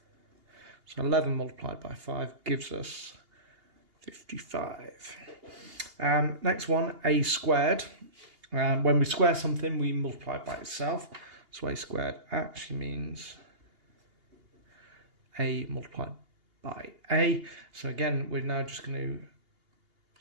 So 11 multiplied by 5 gives us 55. Next one, A squared. When we square something, we multiply it by itself. So A squared actually means A multiplied by A. So again, we're now just going to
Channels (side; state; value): left; late; 2.8 ms